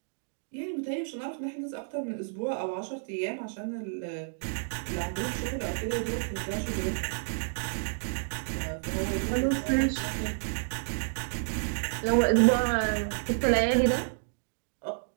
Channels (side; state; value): left; silent; digital silence